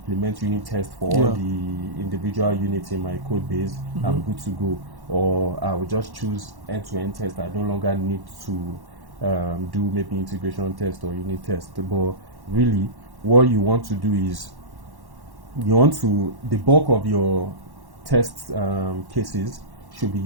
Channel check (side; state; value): left; late; 1.1 ms